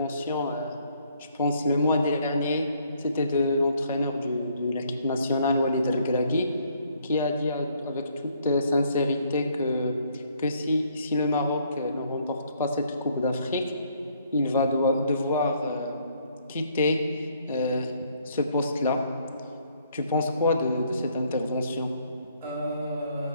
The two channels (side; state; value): both; inverted; correlation -0.67